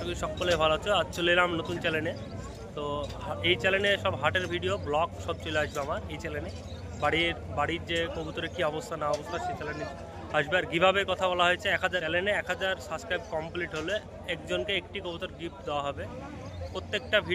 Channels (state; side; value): identical; both; correlation 1.00